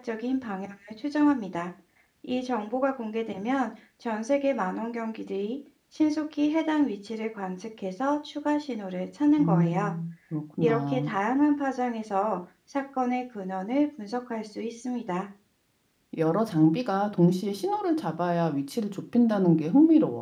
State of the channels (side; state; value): both; identical; correlation 1.00